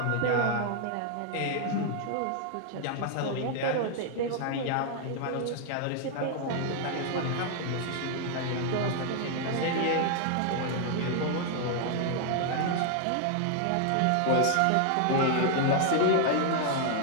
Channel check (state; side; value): different; both; correlation 0.00